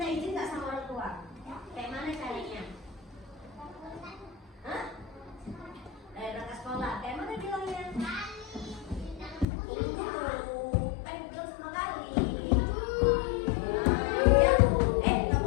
izin nggak sama orang tua? Kayak mana caranya? Hah? Berangkat sekolah. Kayak mana bilangnya? Tunggu dulu. Kan belum sama Gali. Ya, nggak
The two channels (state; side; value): drops out; right; at 9.5 s